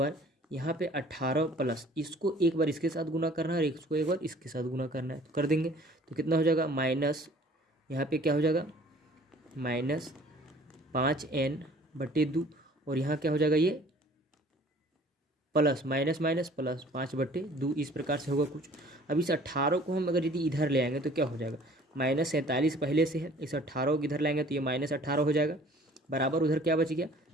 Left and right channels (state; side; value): normal; both; correlation 0.52